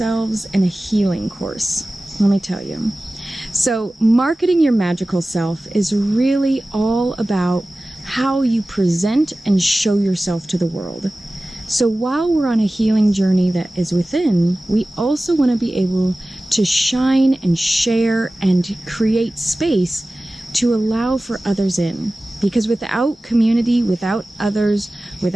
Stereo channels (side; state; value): both; normal; correlation 0.97